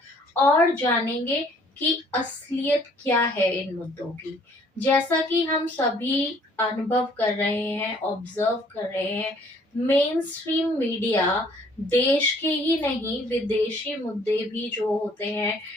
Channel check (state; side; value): normal; both; correlation 0.59